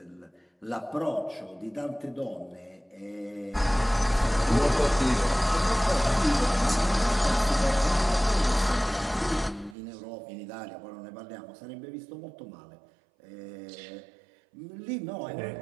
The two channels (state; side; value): drops out; left; at 9.8 s